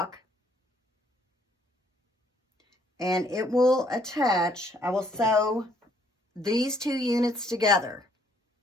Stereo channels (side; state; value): both; normal; correlation 0.65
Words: and it will attach. I will sew these 2 units together,